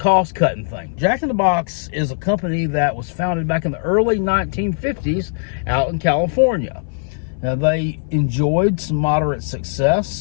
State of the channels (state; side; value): silent; right; 58 dB below the other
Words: thing. Jack in the Box is a company that was founded back in the early 1950s out in California. Now, they enjoyed some moderate